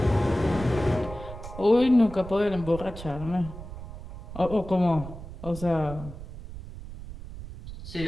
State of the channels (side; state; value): right; noise; rumble, 12 dB below the sound